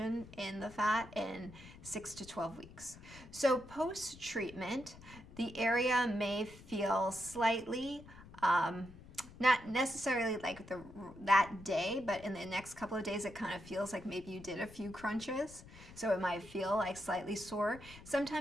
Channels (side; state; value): left; noise; rumble, 18 dB below the sound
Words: in the fat in 6 to 12 weeks. So post-treatment, the area may feel slightly, not necessarily that day, but in the next couple of days, it kind of feels like maybe you did a few crunches. So it might feel slightly sore.